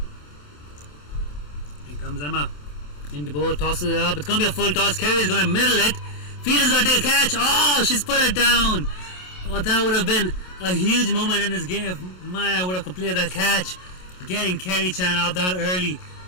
Here comes Emma. Into bowl, tosses it up. It's going to be a full toss. Kerry's going to middle it. Fielder's going to take a catch. Oh, she's put it down. Oh, that would have been a huge moment in this game if Maya would have completed that catch. Getting Kerry Chan out that early.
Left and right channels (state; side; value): late; right; 27 ms